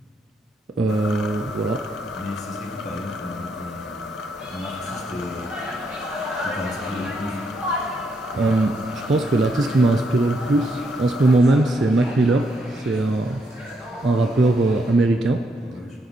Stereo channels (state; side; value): normal; both; correlation 0.77